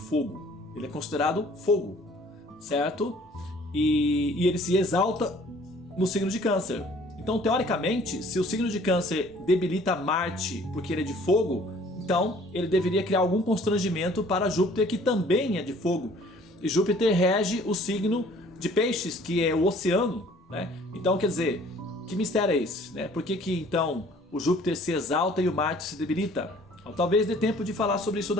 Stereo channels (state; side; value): normal; both; correlation 0.55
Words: Ele é considerado fogo, certo? E ele se exalta no signo de Câncer. Então, teoricamente, se o signo de Câncer debilita Marte porque ele é de fogo, então ele deveria criar algum constrangimento para Júpiter, que também é de fogo. E Júpiter rege o signo de Peixes, que é o oceano, né? Então, quer dizer, que mistério é esse, né? Por que então o Júpiter se exalta e o Marte se debilita? Então, talvez dê tempo de falar sobre isso